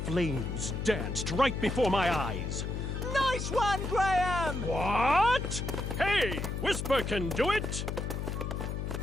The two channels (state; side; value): noise; left; hum, 3 dB below the sound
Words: danced right before my eyes. Nice one, Graham! What? Hey, Whisper can do it!